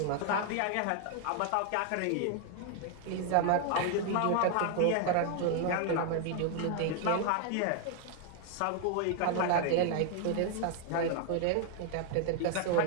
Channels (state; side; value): different; both; correlation 0.00